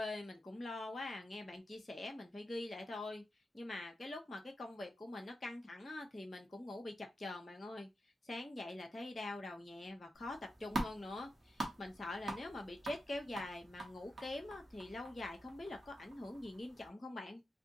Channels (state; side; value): normal; both; correlation 0.89